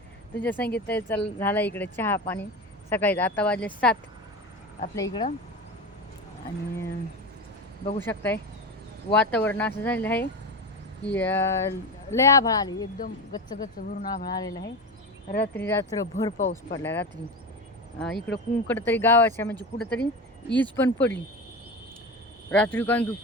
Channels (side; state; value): both; normal; correlation 0.23